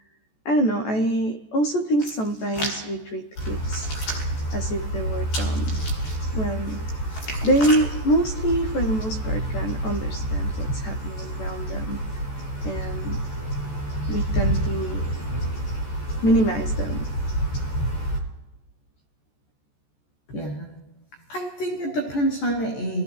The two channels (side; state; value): right; late; 14 ms